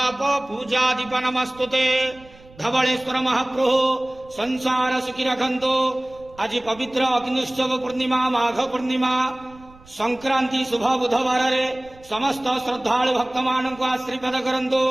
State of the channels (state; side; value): noise; right; rumble, 24 dB below the sound